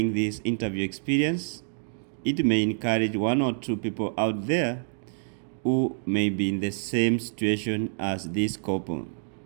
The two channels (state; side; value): silent; left; digital silence